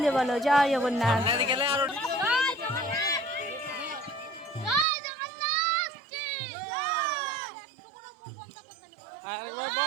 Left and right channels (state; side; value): drops out; left; at 4.9 s